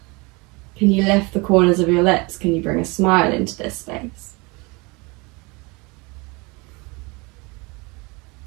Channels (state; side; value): quieter; left; 26.7 dB